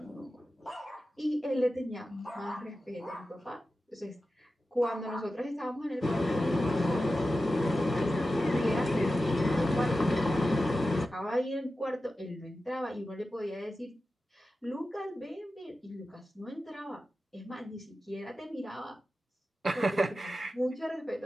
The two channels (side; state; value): both; normal; correlation 0.93